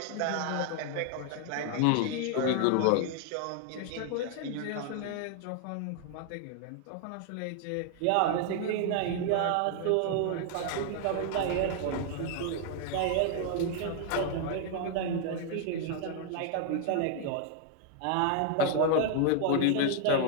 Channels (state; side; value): different; both; correlation 0.00